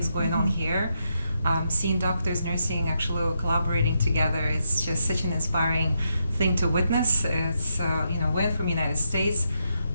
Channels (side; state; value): both; inverted; correlation -0.81